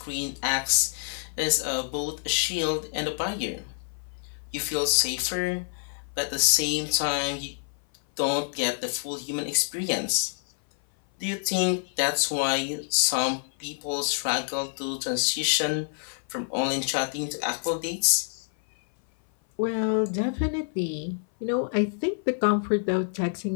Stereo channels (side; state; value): right; silent; 56 dB below the other